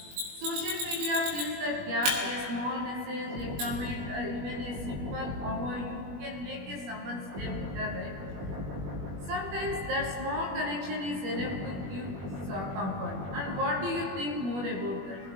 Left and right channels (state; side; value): late; left; 21 ms